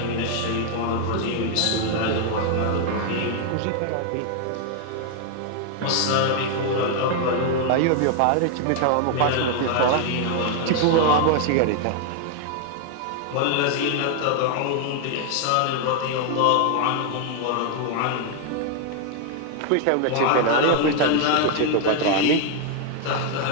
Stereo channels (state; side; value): different; both; correlation 0.00